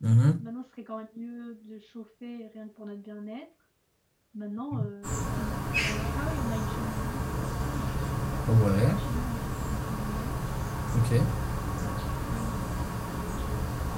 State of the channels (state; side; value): identical; both; correlation 1.00